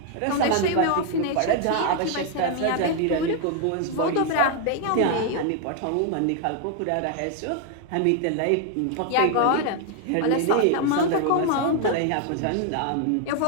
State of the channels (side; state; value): both; different; correlation 0.00